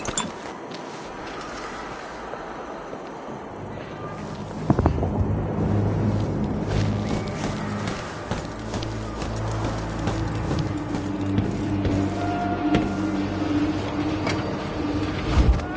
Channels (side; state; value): both; identical; correlation 1.00